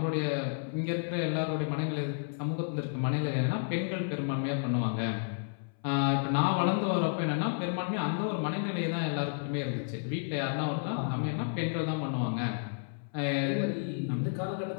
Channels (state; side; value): silent; right; 57 dB below the other